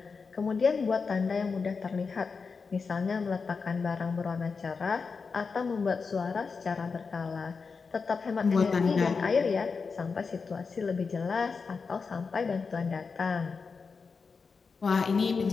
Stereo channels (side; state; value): right; quieter; 5.0 dB